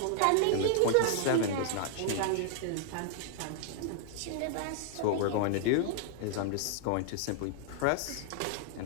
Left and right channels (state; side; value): different; both; correlation 0.00